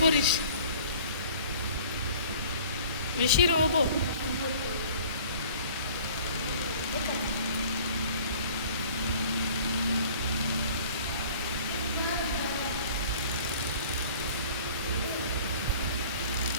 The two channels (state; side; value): inverted; both; correlation -0.49